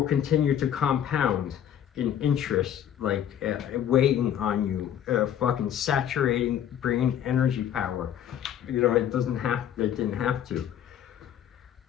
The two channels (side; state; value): right; quieter; 9.9 dB